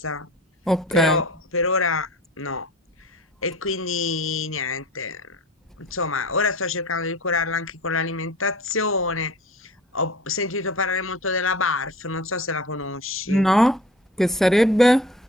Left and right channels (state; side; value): normal; both; correlation 0.41